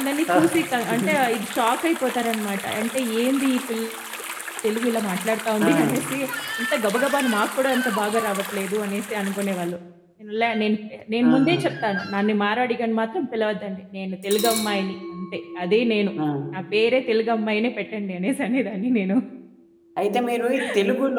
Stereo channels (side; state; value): both; identical; correlation 1.00